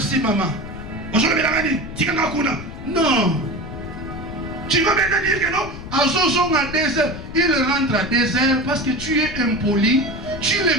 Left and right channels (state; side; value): noise; left; rumble, 11 dB below the sound